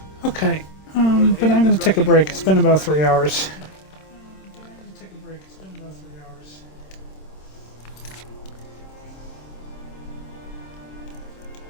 Okay, but I'm going to take a break. It's been about 3 hours.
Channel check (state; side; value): late; right; 26 ms